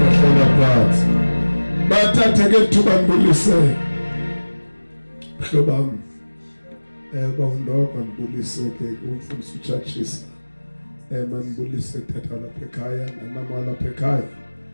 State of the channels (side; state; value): both; inverted; correlation -1.00